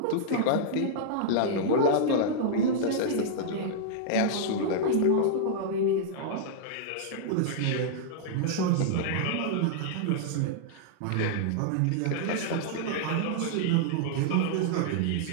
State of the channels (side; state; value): both; different; correlation -0.02